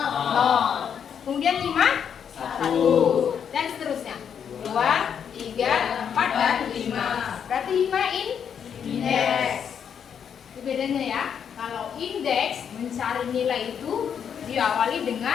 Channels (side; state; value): right; quieter; 7.8 dB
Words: Kemudian 5, 1. Dan seterusnya. 2, 3, 4, dan 5. Berarti 5 indeks. Itu bedanya ya. Kalau indeks mencari nilai itu diawali